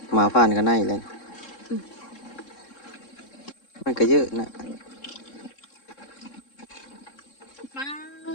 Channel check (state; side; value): late; right; 3.7 ms